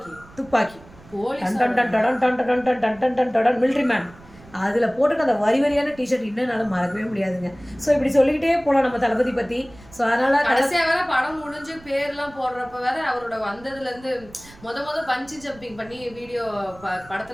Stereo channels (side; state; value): right; noise; rumble, 22 dB below the sound